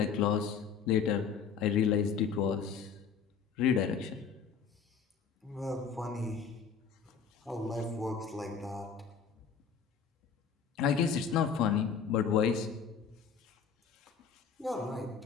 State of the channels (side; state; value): right; quieter; 6.4 dB